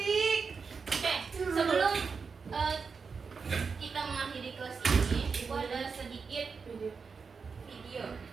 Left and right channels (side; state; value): left; quieter; 5.3 dB